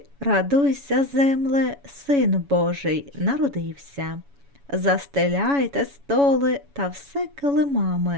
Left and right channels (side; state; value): left; late; 7.1 ms